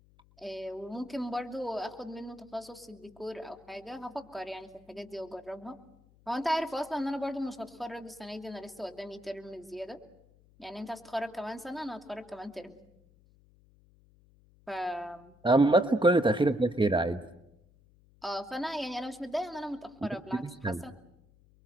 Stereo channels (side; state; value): left; noise; hum, 28 dB below the sound